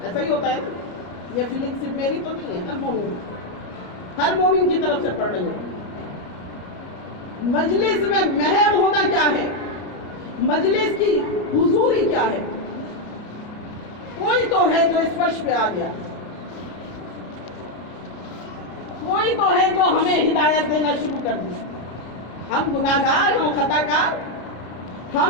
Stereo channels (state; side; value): late; right; 33 ms